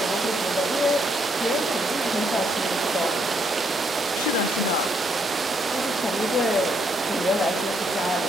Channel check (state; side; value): normal; both; correlation 0.73